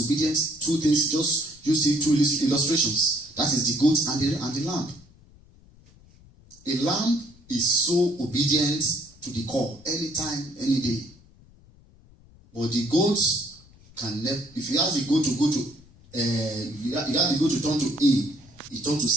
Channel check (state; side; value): noise; left; rumble, 26 dB below the sound